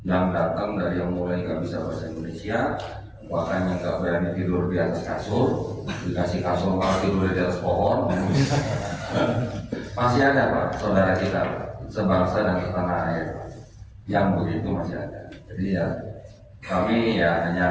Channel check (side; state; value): both; identical; correlation 1.00